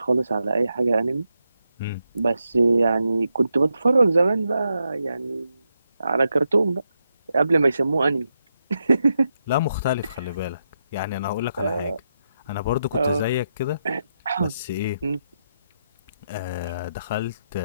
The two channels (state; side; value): inverted; both; correlation -0.84